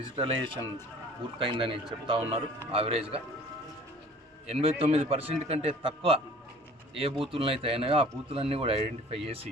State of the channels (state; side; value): normal; both; correlation 0.49